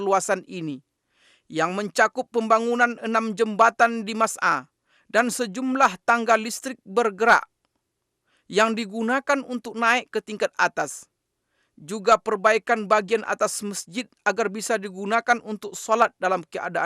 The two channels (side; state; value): both; identical; correlation 1.00